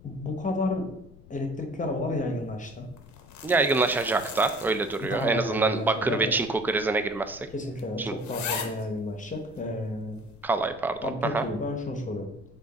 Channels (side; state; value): left; noise; rumble, 21 dB below the sound